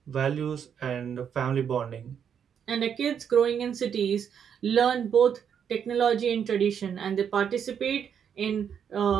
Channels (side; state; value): left; quieter; 7.9 dB